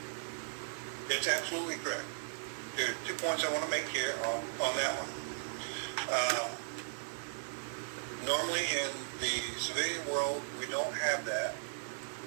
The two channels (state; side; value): silent; left; digital silence